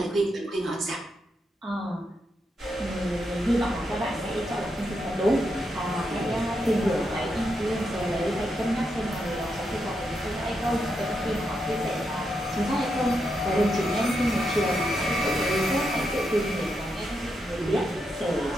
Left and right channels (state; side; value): normal; both; correlation 0.83